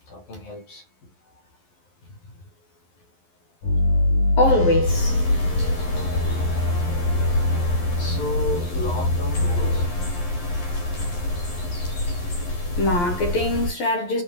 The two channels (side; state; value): right; late; 11 ms